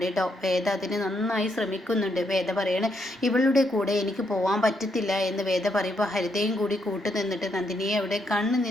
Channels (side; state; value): both; normal; correlation 0.77